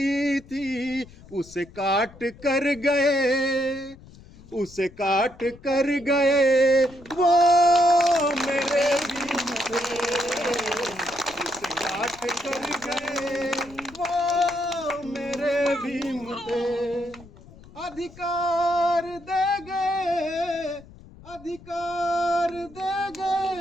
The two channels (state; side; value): noise; left; rumble, 21 dB below the sound